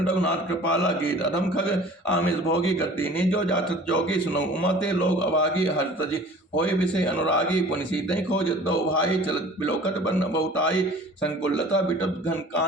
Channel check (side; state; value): both; normal; correlation 0.46